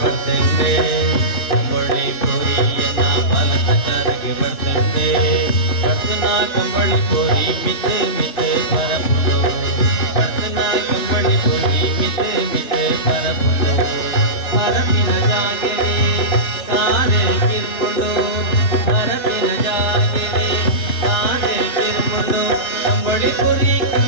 ಬರ್ತಂಡೆ ಅಂಬೊಳ್ಳಿ ಪುರಿಯನ್ನ ಬಲತಕರಿಗೆ ಬರ್ತಂಡೆ ಕರ್ತನ ಕಂಬಳಿ ಪುರಿ ಮಿತ್ತೆ ಮಿತ್ತೆ ಬರಪುಡು ಕರ್ತನ ಕಂಬಳಿ ಪುರಿ ಮಿತ್ತೆ ಮಿತ್ತೆ ಬರಪುಡು ಮರಪಿನ ಜಾಗೆರೆ ಕಾರೆ ಕಿರ್ಕೊಂಡು ಮರಪಿನ ಜಾಗೆರೆ ಕಾರೆ ಕಿರ್ಕೊಂಡು ಕಂಬಳಿ ಪುರಿ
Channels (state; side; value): late; right; 3.0 ms